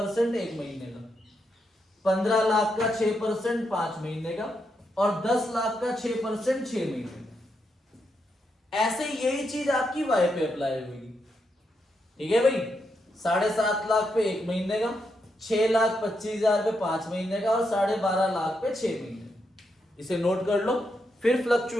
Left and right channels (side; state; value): both; normal; correlation 0.82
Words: 1 महीने का, 15 लाख का 6% 5 महीने का, और 10 लाख का 6% 6 महीने का। ऐसे यही चीज आपकी y पे अप्लाई होगी। ठीक है भाई। 7.5 लाख पे 1 महीने का, 6,25,000 पे 5 महीने का, और 12.5 लाख पे 6 महीने का। इसे नोट कर लो, फिर